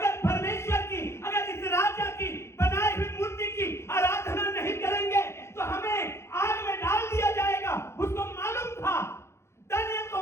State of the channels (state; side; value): late; right; 0.13 ms